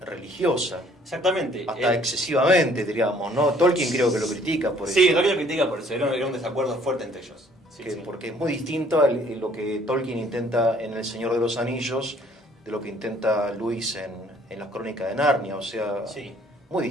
religiosa. Exactamente. Hasta excesivamente, diríamos, ¿no? Tolkien creo que lo critica por eso. Sí, Tolkien lo critica por eso, era un desacuerdo fuerte entre ellos. Sí. Porque es muy distinto a lo que Tolkien intenta en El Señor de los Anillos de lo que intenta Lewis en Las Crónicas de Narnia, o sea, Sí. muy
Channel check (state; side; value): normal; both; correlation 0.59